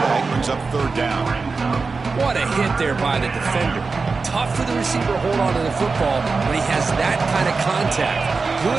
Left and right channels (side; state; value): left; quieter; 4.3 dB